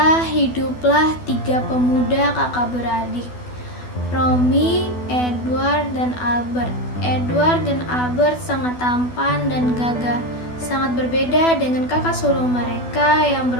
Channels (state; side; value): late; right; 12 ms